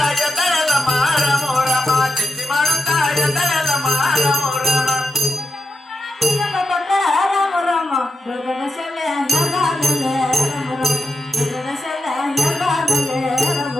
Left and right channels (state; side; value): normal; both; correlation 0.87